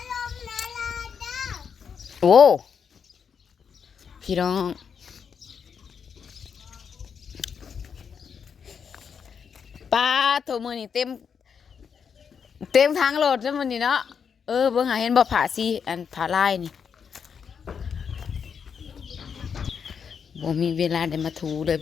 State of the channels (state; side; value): quieter; right; 6.8 dB